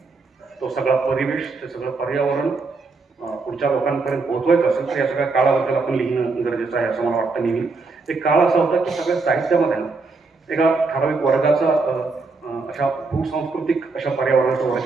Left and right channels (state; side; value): quieter; left; 4.0 dB